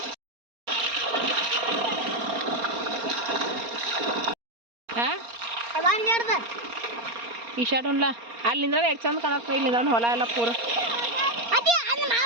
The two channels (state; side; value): late; left; 4.3 ms